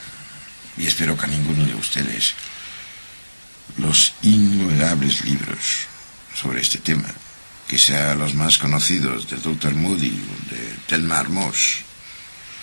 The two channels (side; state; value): both; inverted; correlation -1.00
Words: y espero que a ninguno de ustedes, los innumerables libros sobre este tema, que sean los más conocidos del Dr. Moody o de Thelma Moss,